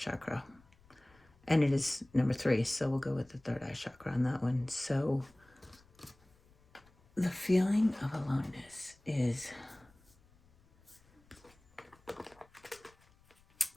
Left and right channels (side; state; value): left; noise; rumble, 30 dB below the sound